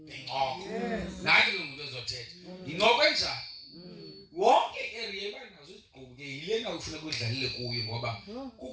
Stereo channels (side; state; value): both; identical; correlation 1.00